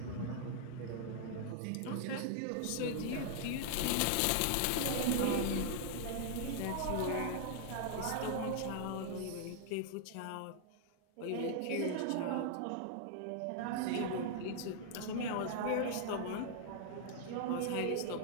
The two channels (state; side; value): different; both; correlation 0.00